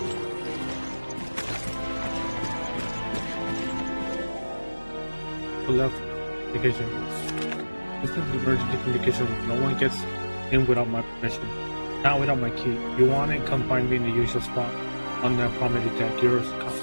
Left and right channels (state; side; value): inverted; both; correlation -1.00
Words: left communication. This is the emergency communication room. No one gets in without my permission. Not without my key. If you want it, come find me in the usual spot. On the promenade deck. Yours.